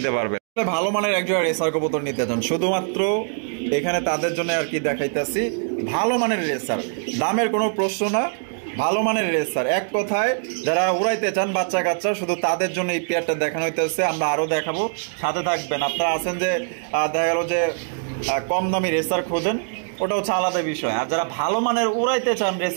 পারবে। ভালো মানের একজোড়া রেসার কবুতর নিতে চান, শুধুমাত্র এখানে তাদের জন্য আর কি দেখাইতেছি। ভালো মানের রেসার, দামের কোনো প্রশ্ন না, ভালো মানের রেসার, এক কথায় যারা উড়াইতে চান বাচ্চা কাচ্চা, শুধু তাদের জন্য এই পেয়ারটা দেখানো হইতেছে। আমরা আরো দেখাবো, সাথে থাকবেন। আপনারা আছেন যে দেখা গেল যে কম দামি রেসার খোঁজেন, ওটা হচ্ছে আলাদা বিষয়। আর যারা ভালো মানের উড়াইতে চান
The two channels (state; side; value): silent; left; digital silence